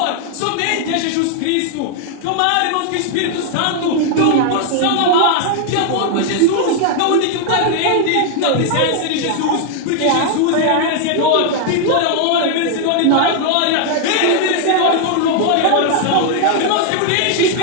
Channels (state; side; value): different; both; correlation 0.00